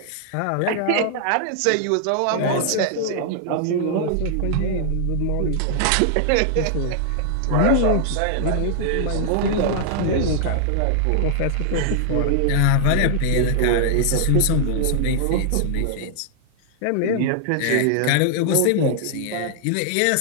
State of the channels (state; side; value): different; both; correlation 0.00